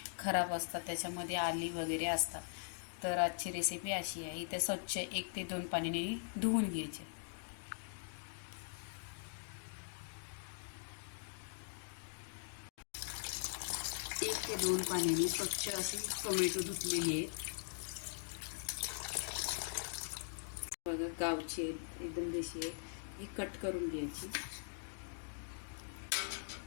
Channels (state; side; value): silent; right; digital silence